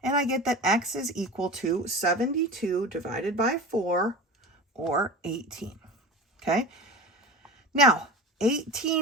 And I get that x is equal to 72 divided by 4, or 18. Okay? Now,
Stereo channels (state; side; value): normal; both; correlation 0.33